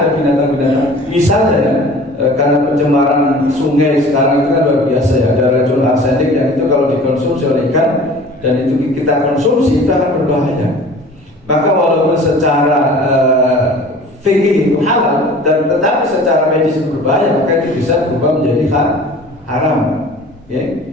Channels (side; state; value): both; normal; correlation 0.44